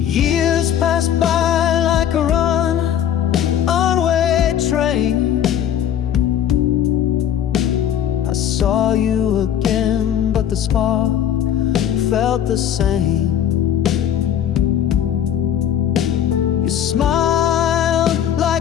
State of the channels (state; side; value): quieter; right; 9.9 dB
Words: Years pass by like a runaway train. I saw you again, but the spark felt the same. You smiled